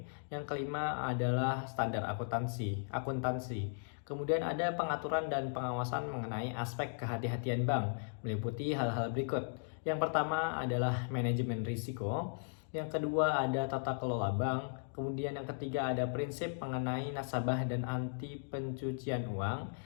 Yang kelima adalah standar akuntansi. Kemudian ada pengaturan dan pengawasan mengenai aspek kehati-hatian bank, meliputi hal-hal berikut. Yang pertama adalah manajemen risiko. Yang kedua ada tata kelola bank. Kemudian yang ketiga ada prinsip mengenai nasabah dan anti pencucian uang.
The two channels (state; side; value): silent; right; digital silence